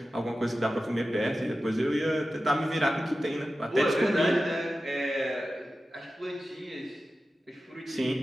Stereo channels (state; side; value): normal; both; correlation 0.94